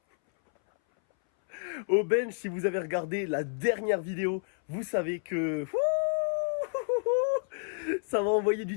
si vous avez regardé la dernière vidéo, vous savez que ça va envoyer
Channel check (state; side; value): silent; right; 57 dB below the other